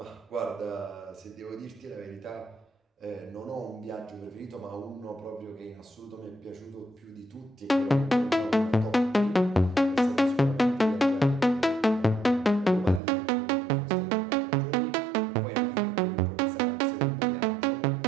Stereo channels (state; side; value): drops out; left; at 13.0 s